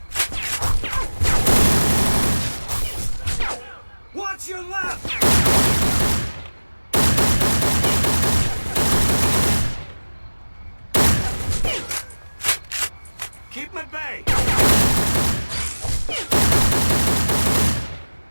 Watch your left! Keep him at bay!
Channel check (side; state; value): both; inverted; correlation -1.00